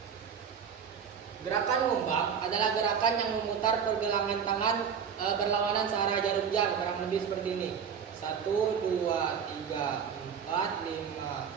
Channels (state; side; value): quieter; left; 7.3 dB